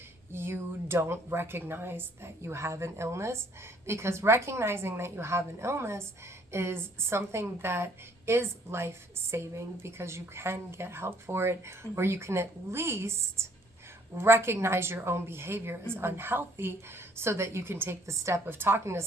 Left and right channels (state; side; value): normal; both; correlation 0.63